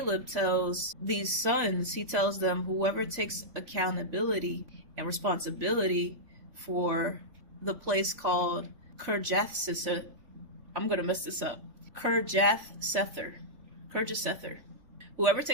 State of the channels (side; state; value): left; late; 3.5 ms